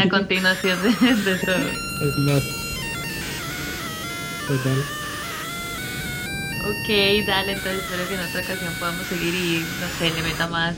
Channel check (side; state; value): both; identical; correlation 1.00